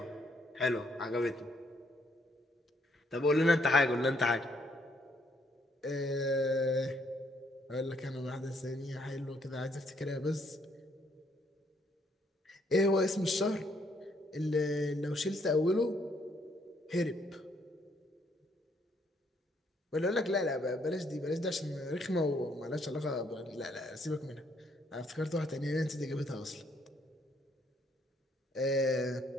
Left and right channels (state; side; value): normal; both; correlation 0.70